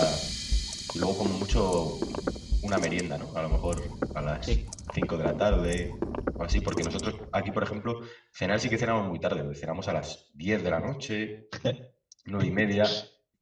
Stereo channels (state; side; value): identical; both; correlation 1.00